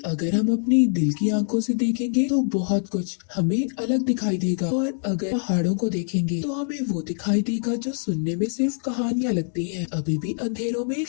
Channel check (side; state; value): right; silent; digital silence